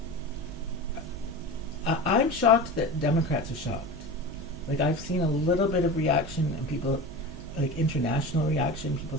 I'm shocked that Democrats are shocked. Like, I've seen a little bit of reaction and people, like international reaction, people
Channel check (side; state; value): both; normal; correlation 0.30